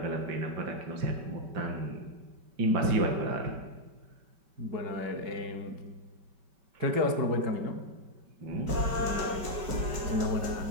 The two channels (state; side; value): late; left; 5.2 ms